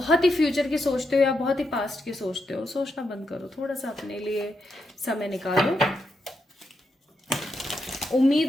ही फ्यूचर की सोचते हो या बहुत ही पास्ट की सोचते हो। सोचना बंद करो, थोड़ा सा अपने लिए समय निकालो,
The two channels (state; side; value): normal; both; correlation 0.83